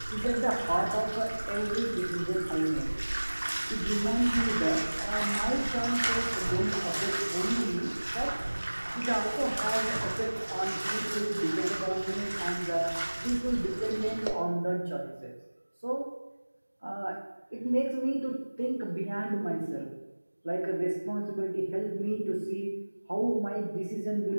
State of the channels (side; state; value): both; inverted; correlation -1.00